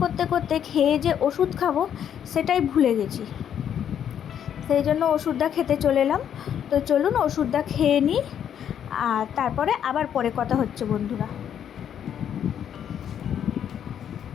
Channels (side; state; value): right; quieter; 9.2 dB